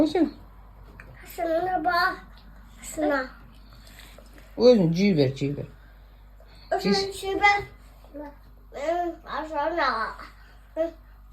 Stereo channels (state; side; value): identical; both; correlation 1.00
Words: sen? Şuna bak. Şuna. Özün ciğer ver, ciğer ver. Şuna şuna. Şuna.